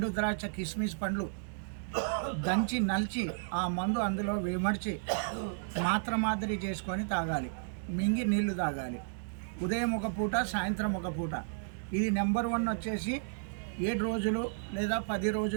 ద్రాక్ష కిస్మిస్ పండ్లు దంచి నలిచి ఆ మందు అందులో విమర్చి మాదిరి చేసుకొని తాగాలి. మింగి నీళ్లు తాగాలి. ఉదయం ఒక పూట, సాయంత్రం ఒక పూట. ఇది నెంబర్ 1 వచ్చేసి 7 రోజులు లేదా 10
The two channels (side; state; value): left; silent; digital silence